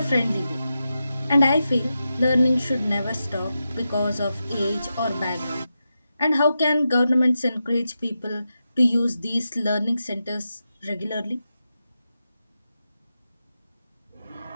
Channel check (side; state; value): both; inverted; correlation -0.89